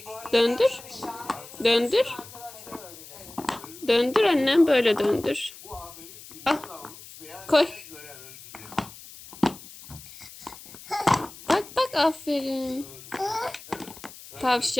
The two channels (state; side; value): noise; left; hiss, 17 dB below the sound